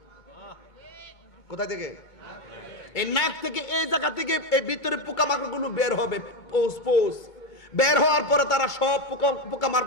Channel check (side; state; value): right; late; 2.2 ms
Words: কোথা থেকে? এই নাক থেকে, এই জায়গা থেকে এই ভিতরে পোকামাকড়গুলো বের হবে। পোষ বের হওয়ার পরে তারা সব